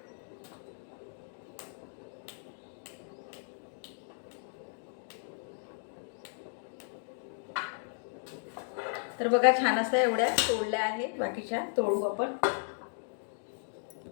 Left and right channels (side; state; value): right; silent; digital silence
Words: तर बघा, छान असं एवढ्या तोडल्या आहेत. बाकीच्या तोडू आपण.